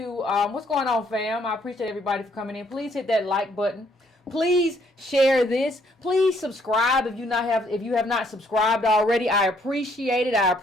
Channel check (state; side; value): normal; both; correlation 0.68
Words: what's going on, fam? I appreciate everybody for coming in. Please hit that like button. Please share this. Please subscribe if you have not subscribed already. I appreciate it. I